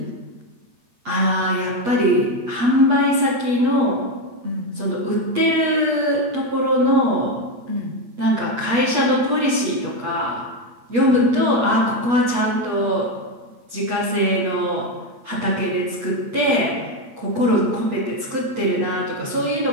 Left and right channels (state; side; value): late; left; 8.3 ms